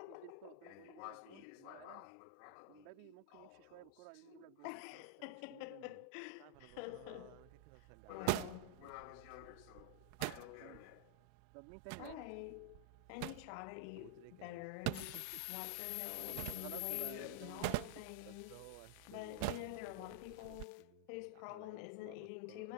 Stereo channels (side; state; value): both; different; correlation -0.01